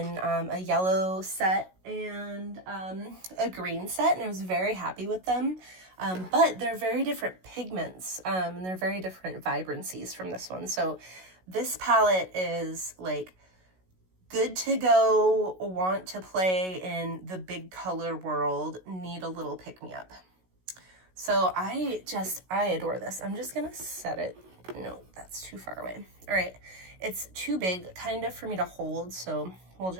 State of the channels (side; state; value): left; late; 16 ms